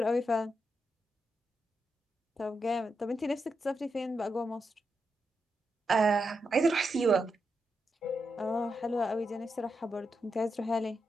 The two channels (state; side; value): normal; both; correlation 0.85